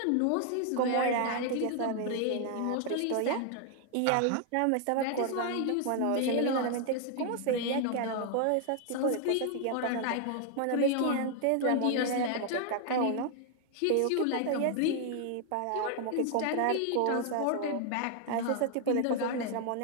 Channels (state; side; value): different; both; correlation 0.00